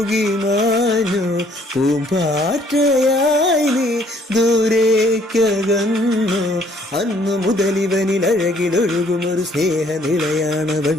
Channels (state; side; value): normal; both; correlation 0.63